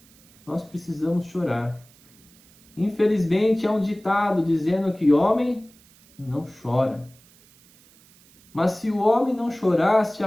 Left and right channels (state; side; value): noise; right; hiss, 28 dB below the sound